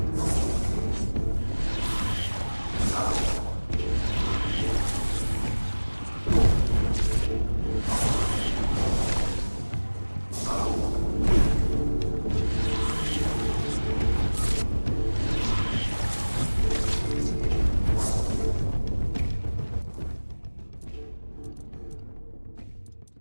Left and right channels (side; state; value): both; inverted; correlation -1.00